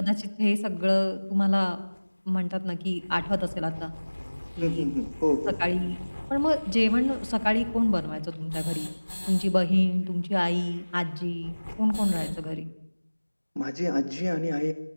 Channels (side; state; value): both; inverted; correlation -1.00